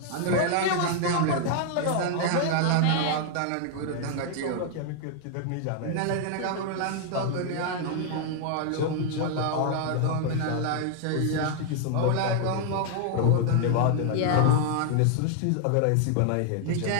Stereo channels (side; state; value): both; different; correlation 0.00